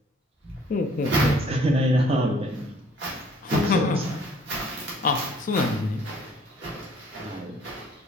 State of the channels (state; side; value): normal; both; correlation 0.58